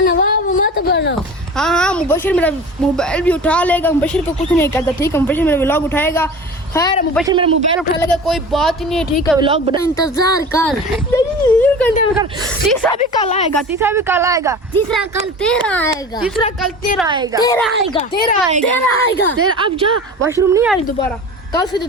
नवाब मत बनो। हाँ हाँ मुबशिर मेरा मोबाइल भी उठा लेगा। मुबशिर को कुछ नहीं करता, ठीक है? मुबशिर मेरा व्लॉग उठाएगा। खैर मुबशिर मेरा मोबाइल उठा लेगा, कोई बात ही नहीं है, ठीक है? व्लॉग बना इंतजार कर। तीसरा भी कल आएगा, तीसरा भी कल आएगा। तीसरा कल तेरा आएगा। तीसरा कल तेरा आएगा। तेरा आएगा। तेरा आएगा। तेरा आएगा। तेरा अब जा, वॉशरूम नहीं आई दोबारा। कल से तो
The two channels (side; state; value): both; normal; correlation 0.36